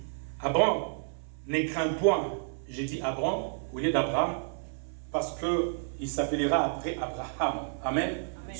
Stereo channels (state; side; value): silent; left; 57 dB below the other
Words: Abraham, ne crains point. J'ai dit Abraham au lieu d'Abraham, parce qu'il s'appellera après Abraham. Amen.